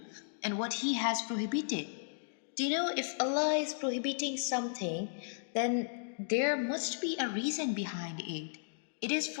and what He has prohibited. Do you know if Allah is prohibiting something, then there must be a reason behind it. It is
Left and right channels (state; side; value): silent; right; digital silence